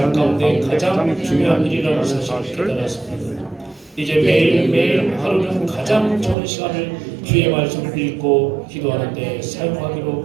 가운데 가장 중요한 일이라는 사실을 깨달았습니다. 이제 매일매일 하루는 가장 좋은 시간을 주의 말씀을 읽고 기도하는 데 사용하기로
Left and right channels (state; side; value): drops out; left; at 6.4 s